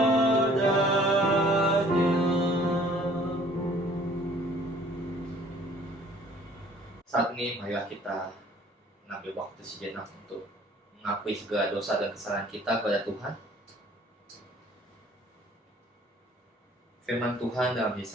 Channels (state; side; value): normal; both; correlation 0.56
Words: Saat ini marilah kita mengambil waktu sejenak untuk mengakui segala dosa dan kesalahan kita kepada Tuhan. Firman Tuhan dalam